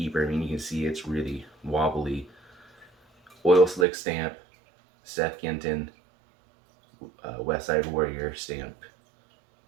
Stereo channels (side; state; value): left; drops out; at 3.9 s